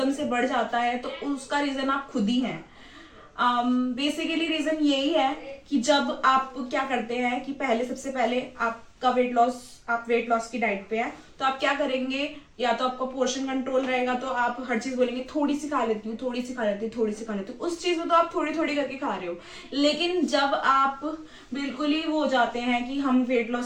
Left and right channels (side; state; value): both; identical; correlation 1.00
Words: से बढ़ जाता है, तो उसका रीजन आप खुद ही हैं। बेसिकली रीजन यही है कि जब आप क्या करते हैं कि सबसे पहले आपका आप वेट लॉस की डाइट पे है, तो आप क्या करेंगे, या तो आपका पोर्शन कंट्रोल रहेगा तो आप हर चीज बोलेंगे थोड़ी सी खा लेती हूँ, थोड़ी सी खा लेती हूँ, थोड़ी सी खा लेती हूँ। उस चीज में तो आप थोड़ी थोड़ी करके खा रहे हो। लेकिन जब आप बिल्कुल ही वो हो जाते हैं कि हम वेट